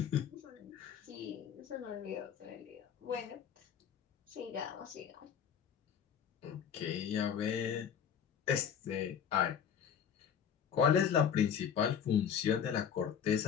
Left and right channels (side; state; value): right; quieter; 8.1 dB